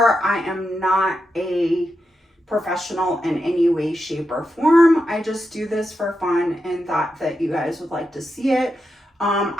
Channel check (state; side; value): normal; both; correlation 0.86